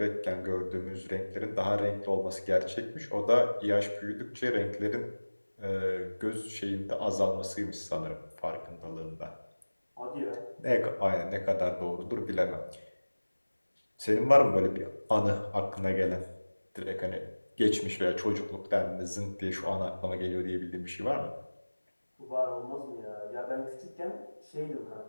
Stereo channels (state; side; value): inverted; both; correlation -1.00